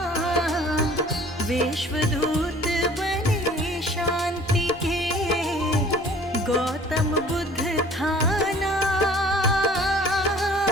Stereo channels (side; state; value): both; normal; correlation 0.50